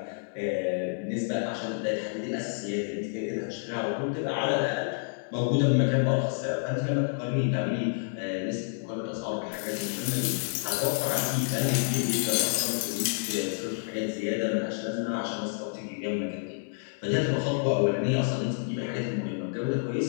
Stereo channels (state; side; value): silent; right; digital silence